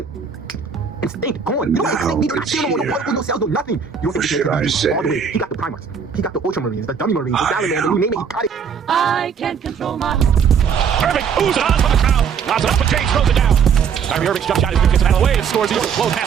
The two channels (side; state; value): left; quieter; 6.7 dB